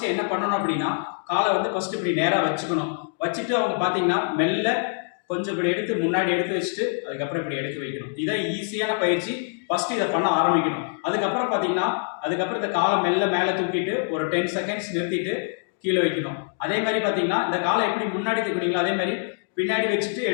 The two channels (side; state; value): right; silent; digital silence